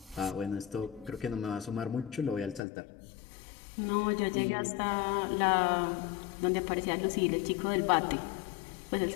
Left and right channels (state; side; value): drops out; right; at 2.6 s